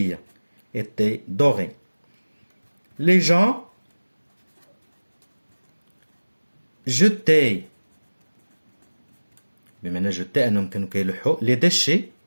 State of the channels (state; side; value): inverted; both; correlation -1.00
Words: était doré. les gens jetaient بمعنى jeter أنهم كانوا كيلوحوا les déchets